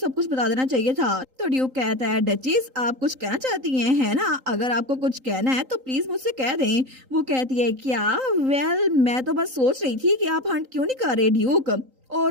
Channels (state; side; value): late; left; 3.8 ms